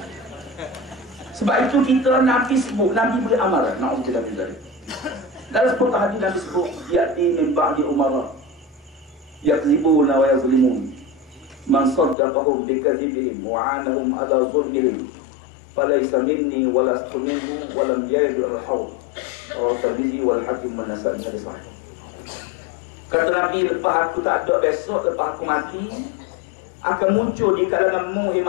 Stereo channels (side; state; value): right; drops out; at 12.2 s